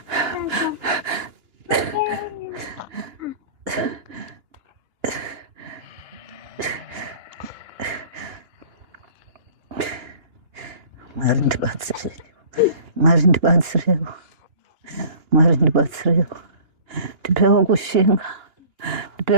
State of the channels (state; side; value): late; left; 2.9 ms